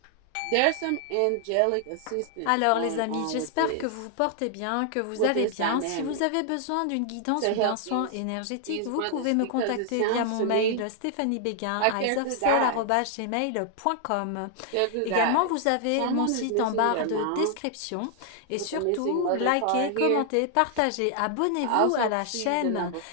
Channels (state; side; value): different; both; correlation 0.00